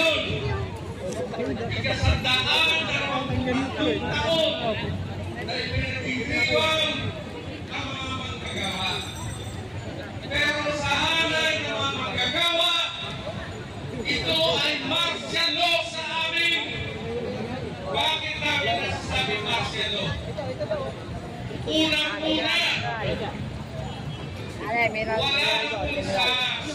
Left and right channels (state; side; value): identical; both; correlation 1.00